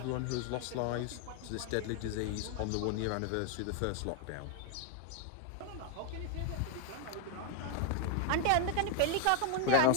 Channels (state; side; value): different; both; correlation 0.01